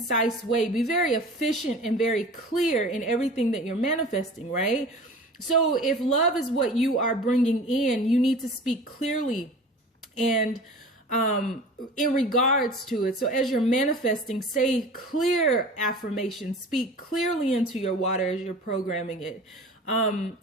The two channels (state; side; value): normal; both; correlation 0.39